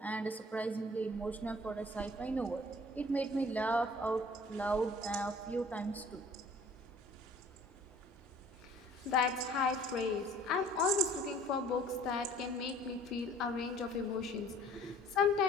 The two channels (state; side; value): normal; both; correlation 0.51